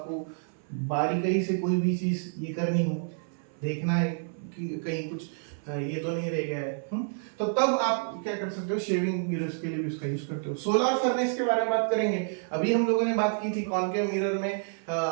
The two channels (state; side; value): silent; left; 56 dB below the other